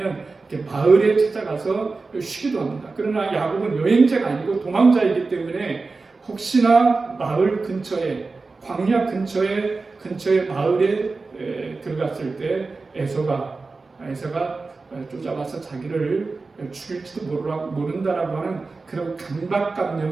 이렇게 마을에 찾아가서 쉬기도 합니다. 그러나 야곱은 여행자가 아니고 도망자이기 때문에 혹시나 마을 근처에 광야 근처에 마을에 들어갔을 때 에서가 쫓아와서 자기를 죽일지도 모른다라고 하는 그런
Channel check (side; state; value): left; quieter; 3.9 dB